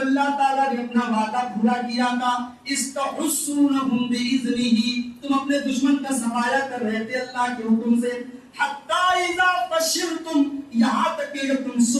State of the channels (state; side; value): identical; both; correlation 1.00